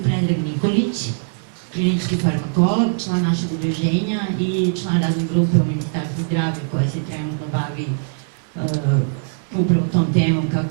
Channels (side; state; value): left; silent; 65 dB below the other